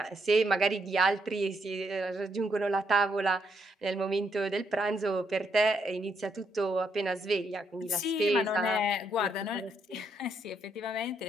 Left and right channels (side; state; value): both; normal; correlation 0.76